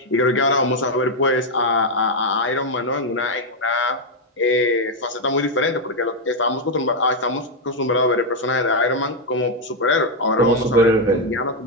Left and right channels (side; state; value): both; normal; correlation 0.01